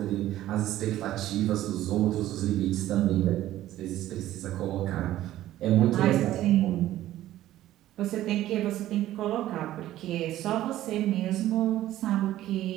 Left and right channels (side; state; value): left; quieter; 13.9 dB